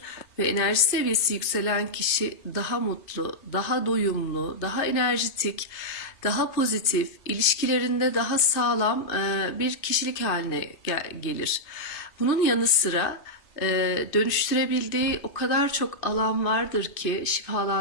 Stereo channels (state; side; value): late; right; 2.6 ms